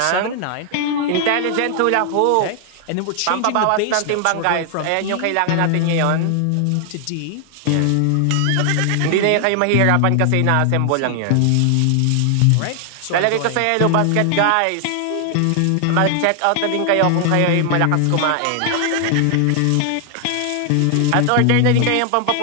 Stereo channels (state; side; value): different; both; correlation 0.00